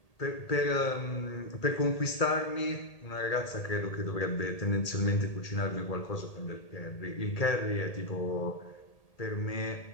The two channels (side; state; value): right; late; 1.8 ms